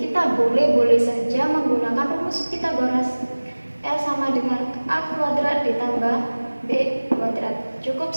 kita boleh saja menggunakan rumus Pythagoras. L sama dengan A kuadrat ditambah B kuadrat. Cukup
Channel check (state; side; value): inverted; both; correlation -1.00